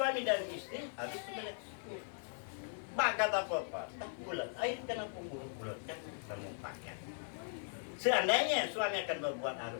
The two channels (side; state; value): right; silent; 52 dB below the other